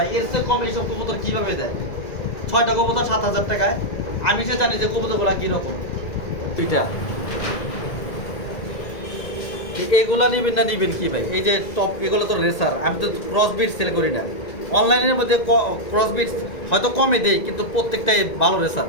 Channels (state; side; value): late; right; 2.0 ms